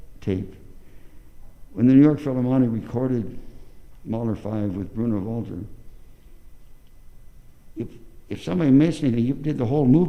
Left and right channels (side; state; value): both; identical; correlation 1.00